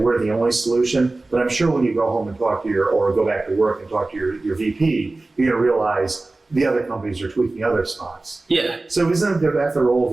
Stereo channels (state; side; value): quieter; left; 3.2 dB